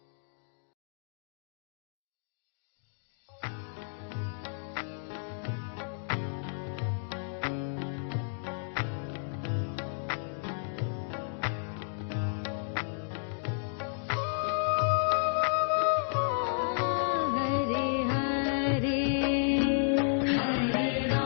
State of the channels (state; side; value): silent; right; digital silence